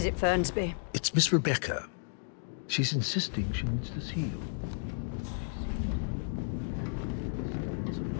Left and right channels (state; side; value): silent; right; digital silence